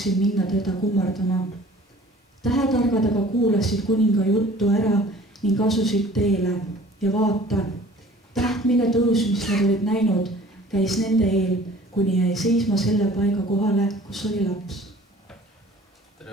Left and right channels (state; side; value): normal; both; correlation 0.49